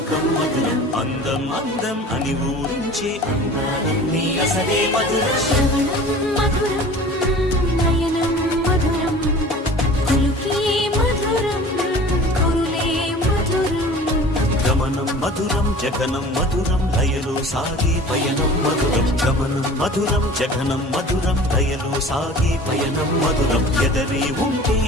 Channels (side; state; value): both; normal; correlation 0.42